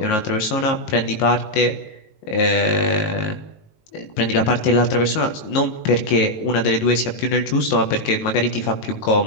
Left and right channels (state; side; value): late; right; 19 ms